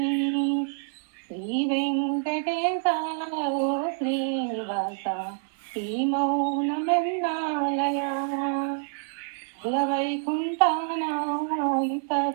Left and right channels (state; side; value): silent; left; 60 dB below the other